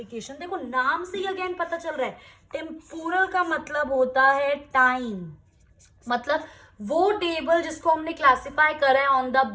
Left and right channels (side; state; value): both; identical; correlation 1.00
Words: देखो नाम से ही अगेन पता चल रहा है टेम्पोरल का मतलब होता है टाइम. मतलब वो टेबल जिसको हमने क्लासिफाई करा है on the